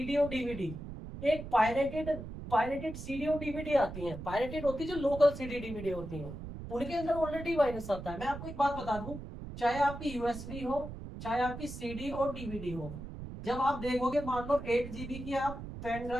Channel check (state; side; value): noise; right; rumble, 10 dB below the sound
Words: और डीवीडी। एक पायरेटेड सीडी और डीवीडी आती है, पायरेटेड होती है जो लोकल सीडी डीवीडी होती है, उनके अंदर ऑलरेडी वायरस आता है। मैं आपको एक बात बता दूं, चाहे आपकी यूएसबी हो, चाहे आपकी सीडी और डीवीडी हो, जब आप देखोगे मान लो 8 GB की आप पेन